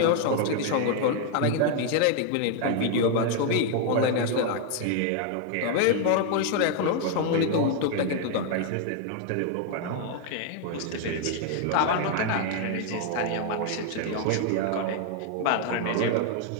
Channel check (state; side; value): different; both; correlation 0.00